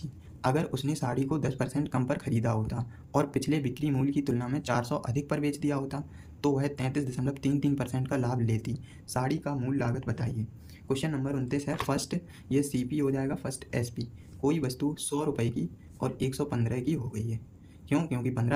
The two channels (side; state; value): both; identical; correlation 1.00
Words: अगर उसने साड़ी को 10% कम पर खरीदा होता और पिछले बिक्री मूल्य की तुलना में 400 अधिक पर बेच दिया होता तो वह 33.33% का लाभ लेती। साड़ी का मूल लागत बताइए। क्वेश्चन नंबर 29 है, फर्स्ट ये CP हो जाएगा, फर्स्ट SP। कोई वस्तु 100 रुपये की और 115 की हो गई है, क्योंकि